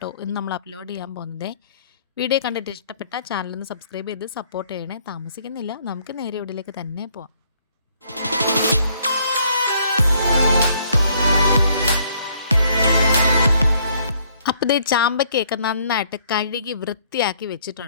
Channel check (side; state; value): both; inverted; correlation -0.65